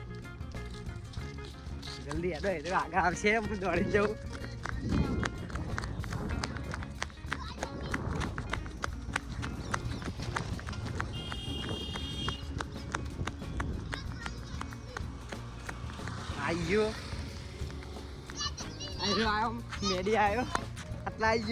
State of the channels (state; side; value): identical; both; correlation 1.00